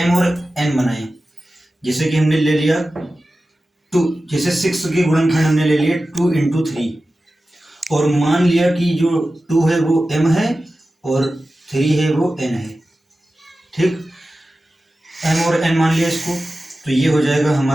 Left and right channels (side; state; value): both; normal; correlation 0.94